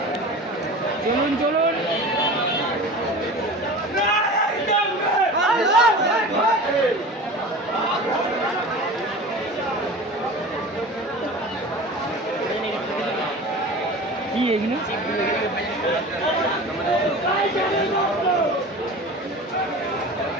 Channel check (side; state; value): both; normal; correlation 0.35